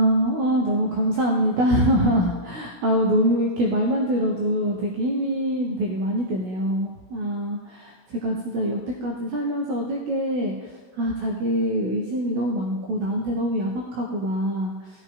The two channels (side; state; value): left; late; 16 ms